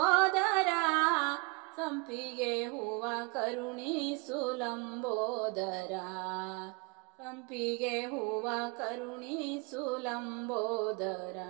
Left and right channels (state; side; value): quieter; left; 29.6 dB